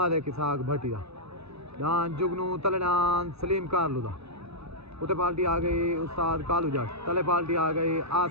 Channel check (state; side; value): late; left; 0.79 ms